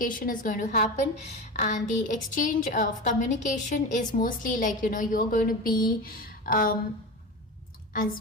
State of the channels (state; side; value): normal; both; correlation 0.26